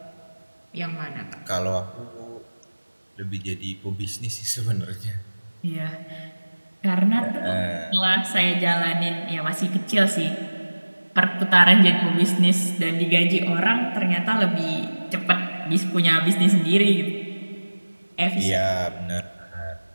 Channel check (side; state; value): both; inverted; correlation -1.00